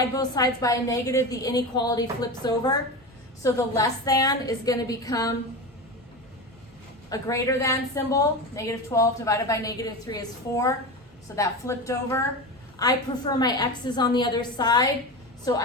both sides by a negative, the inequality flips over. So the less than is going to become a greater than symbol. -12 divided by -3 is 4. So that flipped over. I prefer my x's on the other side. So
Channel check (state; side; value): normal; both; correlation 0.24